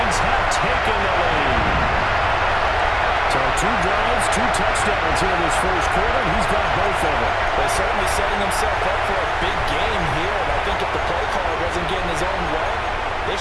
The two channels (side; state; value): both; identical; correlation 1.00